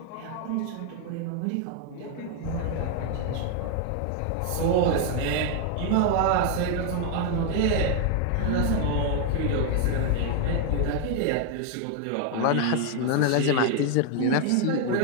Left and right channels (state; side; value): different; both; correlation 0.00